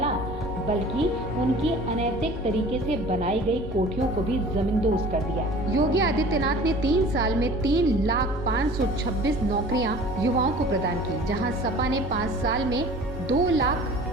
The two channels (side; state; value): both; normal; correlation 0.45